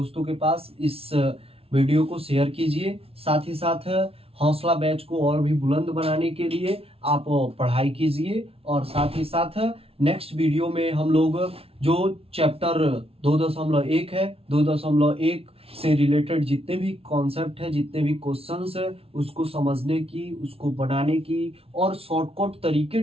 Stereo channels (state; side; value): late; left; 0.28 ms